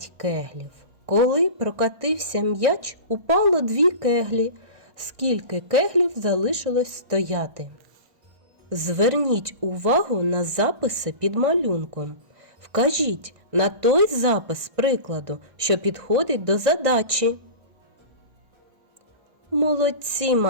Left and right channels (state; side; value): late; left; 1.8 ms